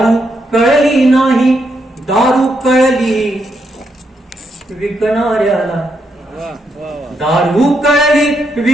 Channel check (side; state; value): both; normal; correlation 0.79